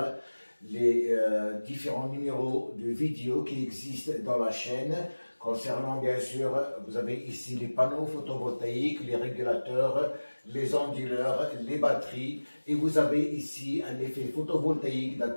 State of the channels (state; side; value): inverted; both; correlation -1.00